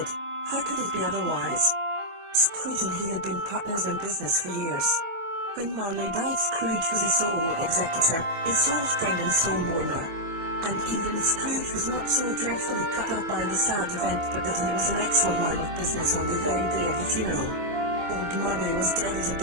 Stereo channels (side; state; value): left; late; 24 ms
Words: How could it be otherwise? Scrooge and he had been partners in business for years. When Marley died, Scrooge was his sole executor, his sole friend and sole mourner. And even Scrooge was not so dreadfully cut up by the sad event but that he was an excellent man of business on the very day of the funeral. Old Marley was dead as a